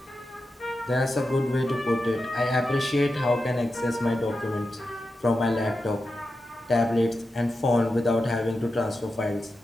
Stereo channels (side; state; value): both; normal; correlation 0.90